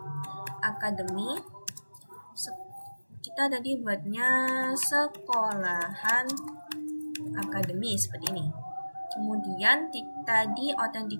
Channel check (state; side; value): inverted; both; correlation -1.00